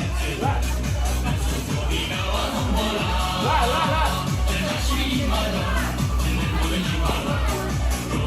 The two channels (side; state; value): both; identical; correlation 1.00